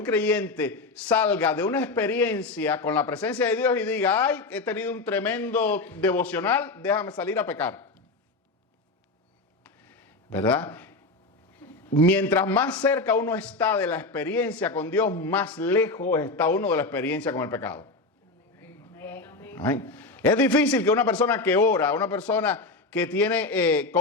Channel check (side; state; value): right; quieter; 3.4 dB